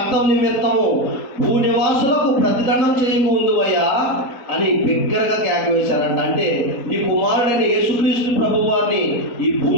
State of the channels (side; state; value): right; late; 4.2 ms